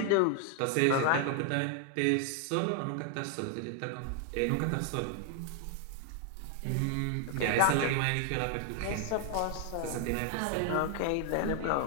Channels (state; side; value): different; both; correlation 0.00